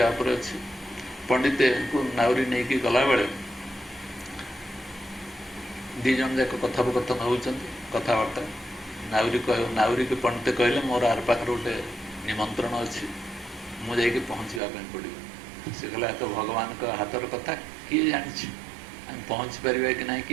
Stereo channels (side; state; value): left; drops out; at 14.6 s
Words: ଉପରେ ଅଛି। ପଣ୍ଡିତଙ୍କୁ ନାଉରୀ ନେଇକି ଗଲାବେଳେ 2 ଜଣ ଯାକ କଥୋପକଥନ ହେଉଛନ୍ତି, କଥାବାର୍ତ୍ତା। ନାଉରୀକୁ ପଣ୍ଡିତ କହିଲେ, ମୋର ଆର ପାଖରେ ଗୋଟେ ନିମନ୍ତ୍ରଣ ଅଛି, ମୁଁ ଯାଇକି ପହଞ୍ଚିବା ପାଇଁ ପଡ଼ିବ। ସେ କହିଲା, ତ ଭଗବାନଙ୍କ ହାତର କଥା, କିଏ ଜାଣିଛି ଆମେ ପହଞ୍ଚି ପାରିବା କି ନାହିଁ,